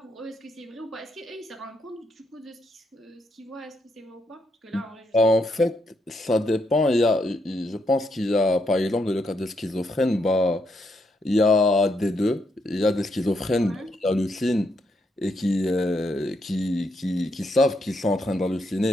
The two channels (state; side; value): normal; both; correlation 0.78